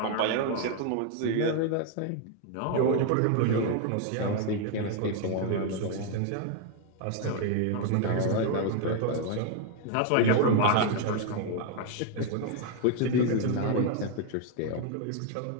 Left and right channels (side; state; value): both; different; correlation 0.00